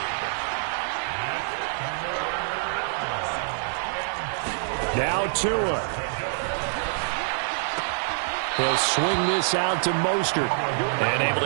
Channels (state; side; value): silent; left; digital silence